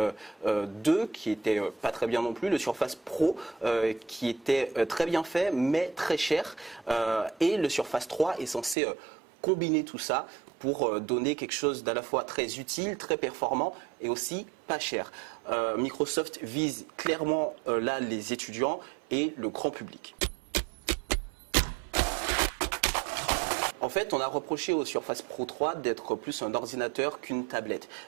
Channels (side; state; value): left; drops out; at 8.8 s